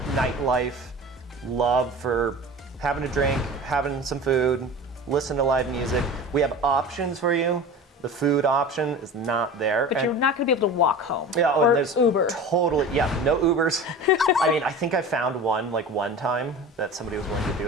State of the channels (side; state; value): both; normal; correlation 0.35